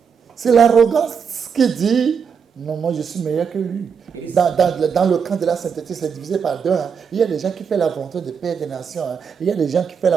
C'est l'arrogance qui dit, non, moi je suis meilleur que lui. Dans le camp de la sainteté, c'est divisé par deux. Hein. Il y a des gens qui font la volonté de Père des nations. Hein. Il y a des gens qui font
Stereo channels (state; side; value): quieter; left; 6.6 dB